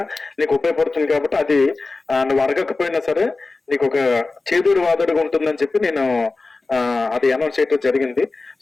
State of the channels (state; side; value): quieter; right; 3.6 dB